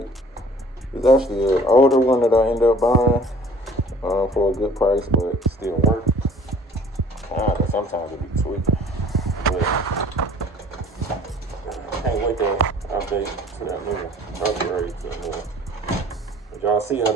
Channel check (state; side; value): normal; both; correlation 0.50